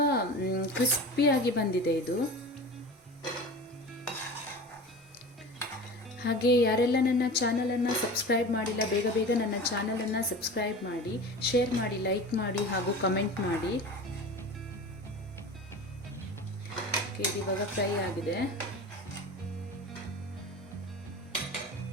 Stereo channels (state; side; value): normal; both; correlation 0.34